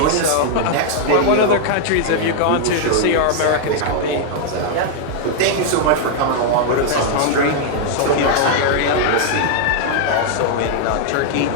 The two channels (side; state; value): both; different; correlation -0.01